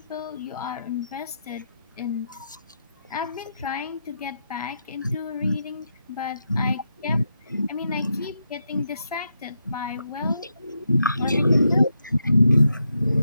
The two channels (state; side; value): inverted; both; correlation -0.82